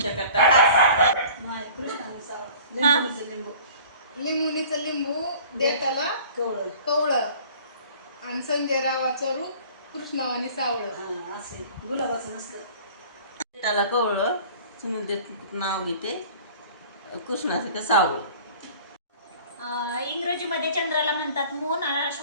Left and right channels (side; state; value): both; inverted; correlation -0.47